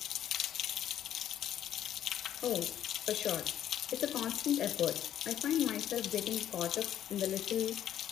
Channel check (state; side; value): quieter; right; 10.9 dB